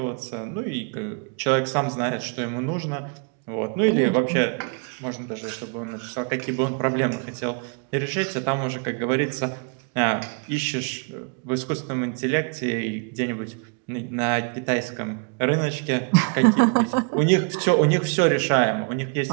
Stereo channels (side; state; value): left; quieter; 39.4 dB